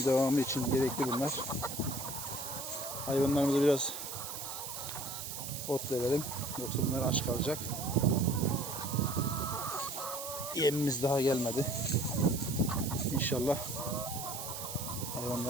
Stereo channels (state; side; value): noise; right; hiss, 7 dB below the sound